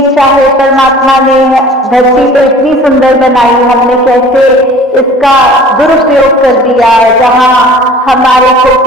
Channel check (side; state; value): both; normal; correlation 0.47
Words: चाहे परमात्मा ने धरती तो इतनी सुंदर बनाई, हमने कैसे इसका दुरुपयोग कर दिया, जहां हमारे को